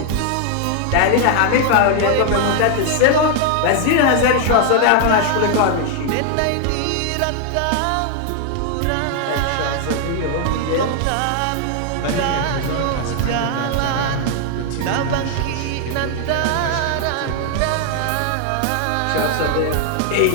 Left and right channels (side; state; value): both; different; correlation 0.00